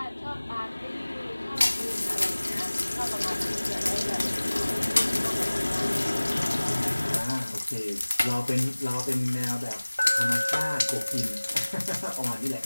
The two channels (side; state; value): both; inverted; correlation -1.00